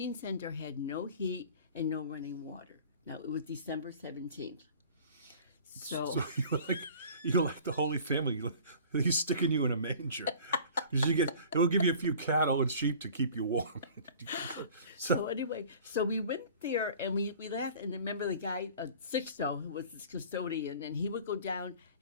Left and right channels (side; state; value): both; inverted; correlation -0.45